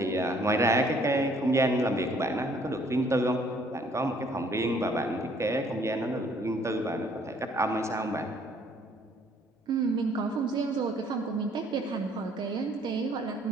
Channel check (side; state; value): both; normal; correlation 0.61